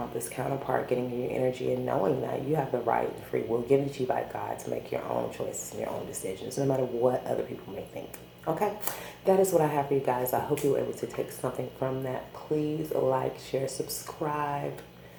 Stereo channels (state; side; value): identical; both; correlation 1.00